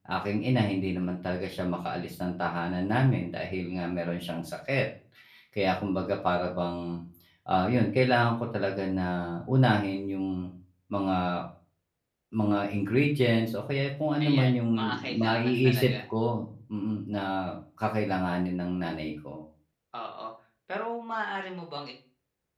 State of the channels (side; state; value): both; identical; correlation 1.00